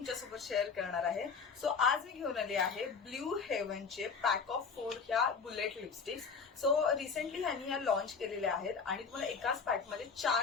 शेअर करणार आहे. सो आज मी घेऊन आली आहे ब्ल्यू हेवनचे पॅक ऑफ 4 ह्या बुलेट लिपस्टिक्स. सो रिसेंटली ह्यांनी ह्या लॉन्च केलेल्या आहेत आणि तुम्हाला एकाच पॅकमध्ये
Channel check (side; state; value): right; quieter; 5.4 dB